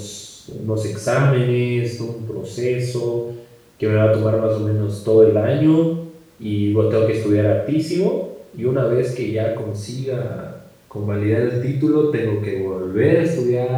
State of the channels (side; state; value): both; identical; correlation 1.00